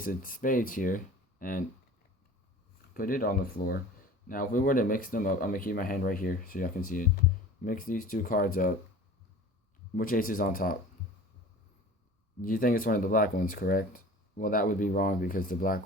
of spades here and put it on the floor, now if we were to mix them up, I'm gonna keep my hand right here so y'all can see it. Mix these 2 cards up. Which ace is on top? You think it's one of the black ones, correct? Well, that would be wrong because the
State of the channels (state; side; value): normal; both; correlation 0.42